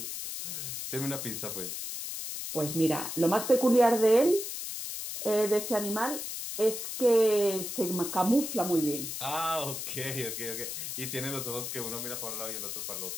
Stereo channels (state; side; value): noise; left; hiss, 6 dB below the sound